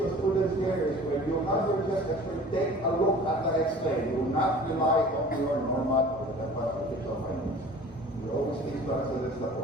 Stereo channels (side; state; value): both; normal; correlation 0.44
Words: students here is when you have your chest X-ray, take a look at the X-ray. Do not rely on your normal or the official findings. We always teach students that